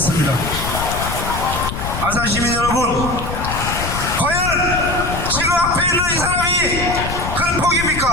안산 시민 여러분, 과연 지금 앞에 있는 이 사람이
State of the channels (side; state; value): left; noise; rumble, 6 dB below the sound